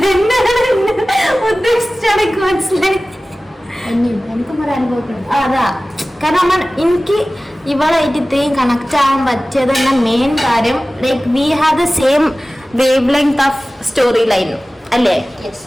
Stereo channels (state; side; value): normal; both; correlation 0.97